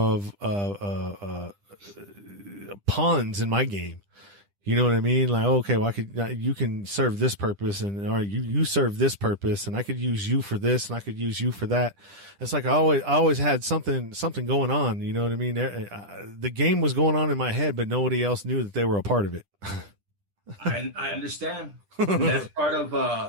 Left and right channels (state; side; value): late; left; 10 ms